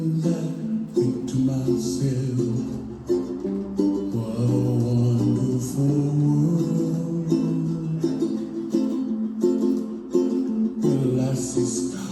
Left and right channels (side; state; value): both; identical; correlation 1.00